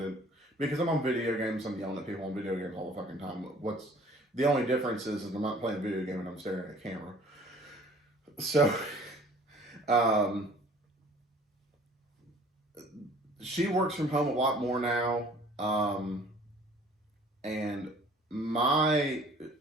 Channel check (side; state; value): both; normal; correlation 0.52